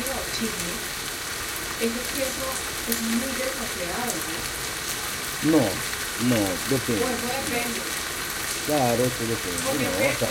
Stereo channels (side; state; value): both; identical; correlation 1.00